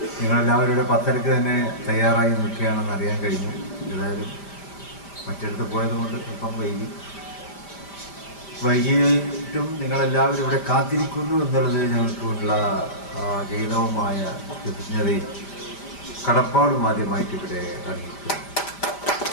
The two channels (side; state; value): right; late; 5.0 ms